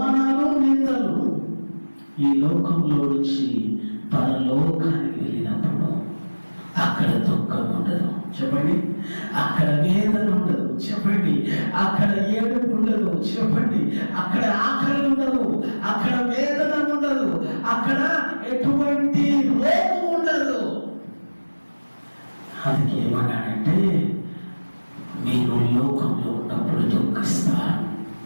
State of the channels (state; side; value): inverted; both; correlation -1.00